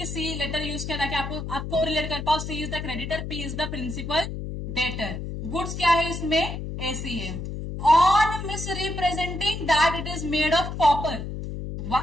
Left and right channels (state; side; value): noise; left; hum, 6 dB below the sound